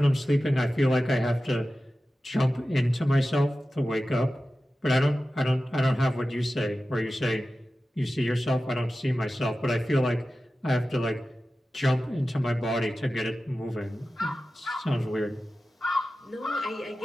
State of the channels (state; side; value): normal; both; correlation 0.94